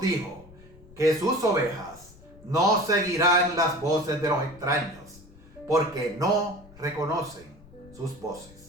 dijo que sus ovejas no seguirán las voces de los extraños, porque no reconocen sus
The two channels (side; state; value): left; noise; rumble, 23 dB below the sound